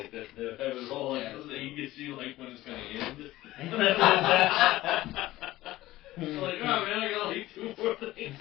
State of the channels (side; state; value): right; quieter; 16.6 dB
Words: all, like, so that you could see, like, when it's going to end. It's like, oh, man, I got, like, 2 more things.